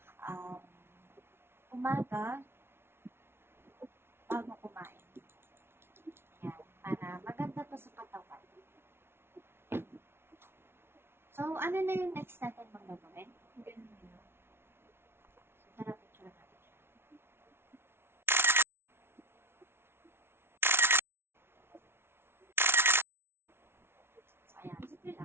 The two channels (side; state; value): left; late; 0.12 ms